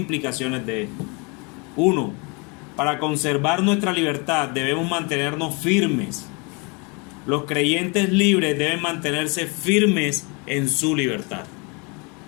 de esto. Uno, para conservar nuestra libertad debemos mantenernos firmes. Los creyentes libres deben mantenerse firmes en su libertad.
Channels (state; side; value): quieter; right; 31.0 dB